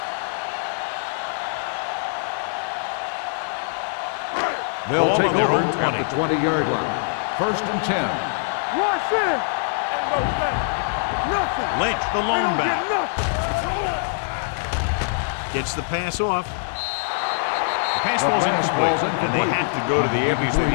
Ball on their own 20. 20-yard line. First and 10. Rush in. Lynch, the lone back. Gets the pass off. The pass falls incomplete, and they have to go to the air because they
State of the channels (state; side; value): silent; right; digital silence